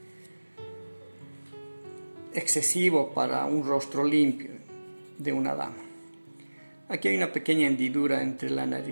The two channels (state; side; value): inverted; both; correlation -1.00